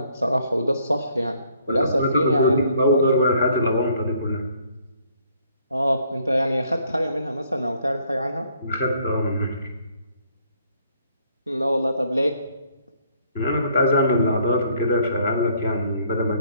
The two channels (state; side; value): inverted; both; correlation -0.65